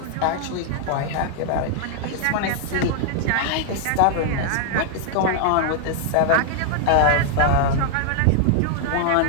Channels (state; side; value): different; both; correlation 0.00